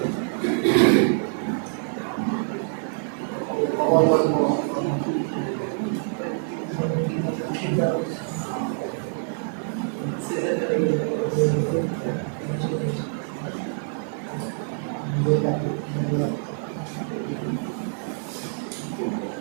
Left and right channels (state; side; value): silent; left; 61 dB below the other